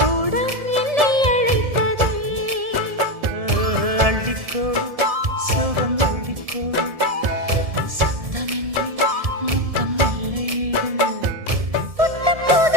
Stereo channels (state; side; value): late; left; 1.7 ms